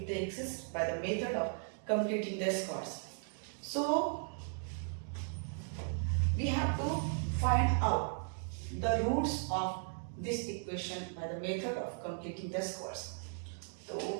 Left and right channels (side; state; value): left; silent; 53 dB below the other